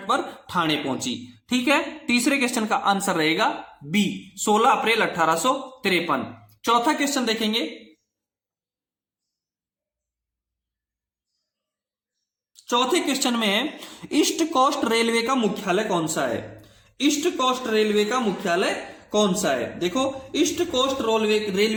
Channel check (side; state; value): both; identical; correlation 1.00